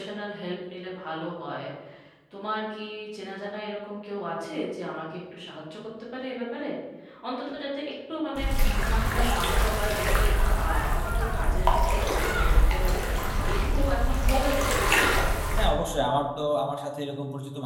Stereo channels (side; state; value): both; identical; correlation 1.00